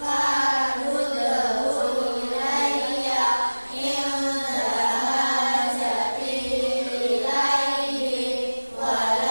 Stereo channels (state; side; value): inverted; both; correlation -1.00